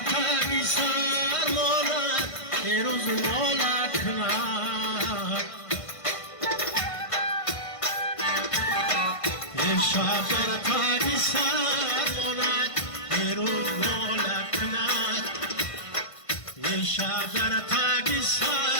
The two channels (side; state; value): right; late; 1.5 ms